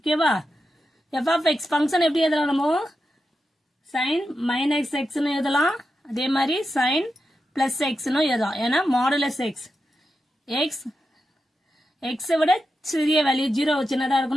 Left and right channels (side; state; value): both; normal; correlation 0.89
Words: f of x function எப்படி எழுதலாம் நம்ம sin minus x னு எழுதலாம் அதே மாதிரி sin plus x னு எழுதலாம் ஏன்னா modulus x x விட சிறிய வேல்யூ 0 சின்னதா